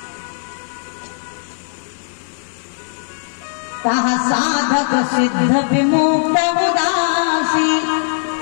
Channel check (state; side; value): silent; right; digital silence